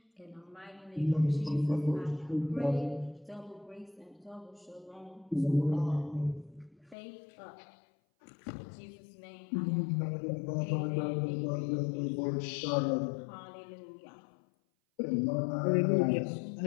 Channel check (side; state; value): right; drops out; at 7.0 s